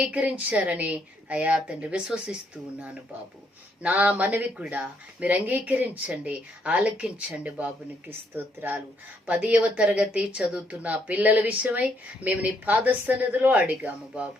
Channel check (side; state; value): both; normal; correlation 0.72